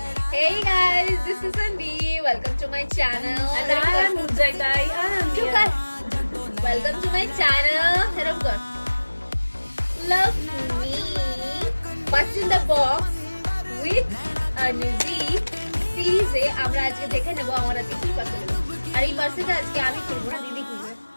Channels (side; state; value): both; inverted; correlation -1.00